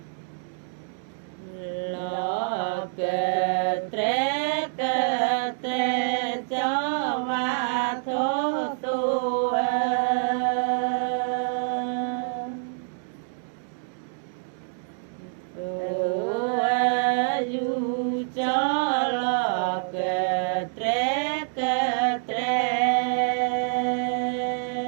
cho và thô tu du cho lo ke tre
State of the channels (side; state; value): left; silent; digital silence